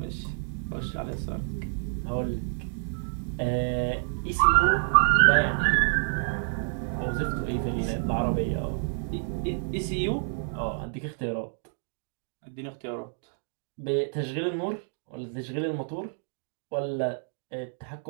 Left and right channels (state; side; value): silent; left; digital silence